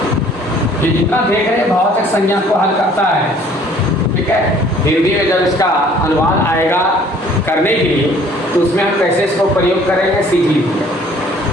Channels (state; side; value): normal; both; correlation 0.56